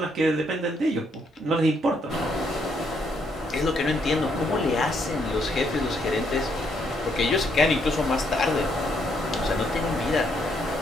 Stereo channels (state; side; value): normal; both; correlation 0.73